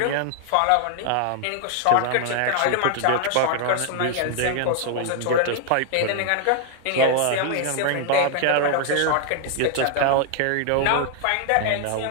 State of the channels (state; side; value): different; both; correlation 0.00